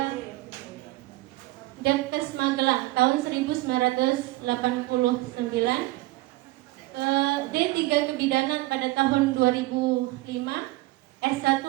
Depkes Magelang tahun 1989, D3 Kebidanan pada tahun 2005, S1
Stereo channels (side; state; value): left; quieter; 19.4 dB